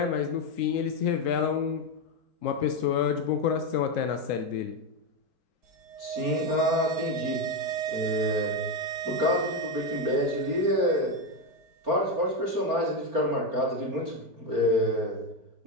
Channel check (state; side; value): late; left; 4.3 ms